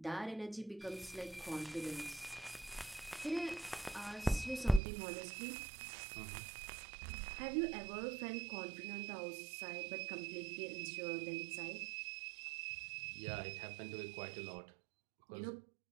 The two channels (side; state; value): left; drops out; at 4.8 s